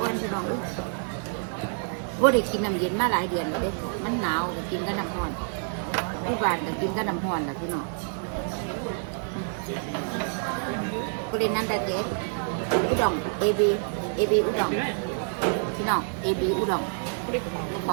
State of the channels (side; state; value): left; silent; 60 dB below the other